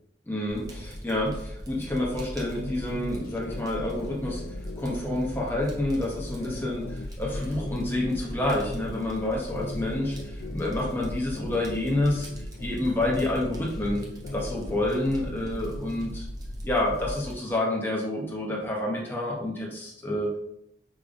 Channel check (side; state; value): both; normal; correlation 0.65